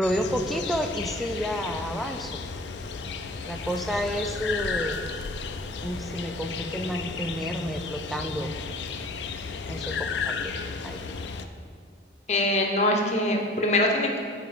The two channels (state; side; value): normal; both; correlation 0.45